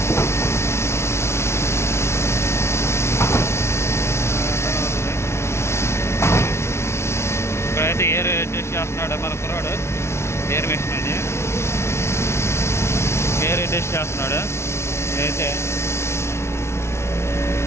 ఇక్కడైతే ఎయిర్ అడ్జస్ట్ చేస్తున్నాడు మన కుర్రాడు. ఎయిర్ మిషన్ అది ఎయిర్ అడ్జస్ట్ చేస్తున్నాడు. అయితే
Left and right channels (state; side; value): late; right; 0.13 ms